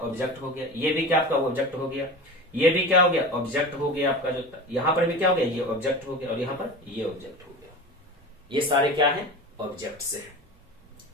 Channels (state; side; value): normal; both; correlation 0.31